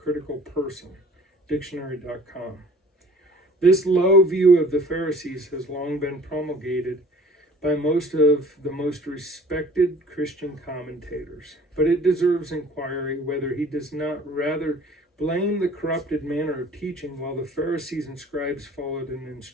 person, dictionary.com. This low view of the Pharisees has long been promulgated by most of the most respected Christian commentators, but it deserves inquiry whether he does not rather blame the corrupted manner of teaching while the Pharisees and scribes followed in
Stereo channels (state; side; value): normal; both; correlation 0.50